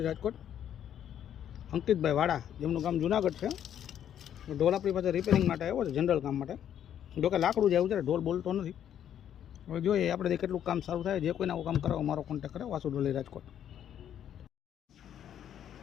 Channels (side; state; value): right; quieter; 9.9 dB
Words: રાજકોટ. અંકિતભાઈ વાડા, જેમનું ગામ જુનાગઢ છે. ઢોલ આપણી પાસે રિપેરિંગ માટે આવ્યો છે, જનરલ કામ માટે. જોકે લાકડું જેવું છે, ઢોલ બોલતો નથી. હવે જોઈએ આપણે કેટલું કામ સારું થાય. જે કોઈને આવું કામ કરો મારો કોન્ટેક્ટ કરે. વાસુડોલી રાજકોટ.